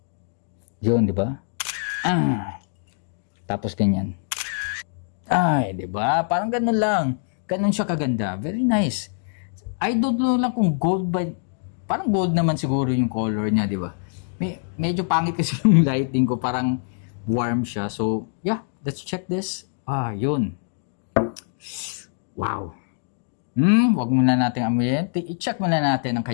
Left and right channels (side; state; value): right; silent; digital silence